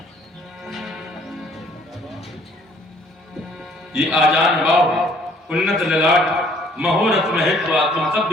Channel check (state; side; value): normal; both; correlation 0.60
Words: ये आजान बाव उन्नत ललाट महोरथ महेश्वा तुम सब